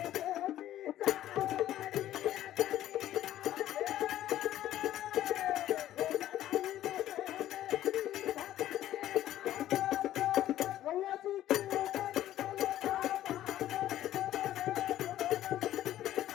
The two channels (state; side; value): quieter; right; 13.0 dB